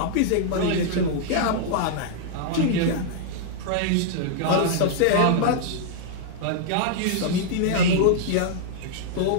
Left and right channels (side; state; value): both; different; correlation -0.01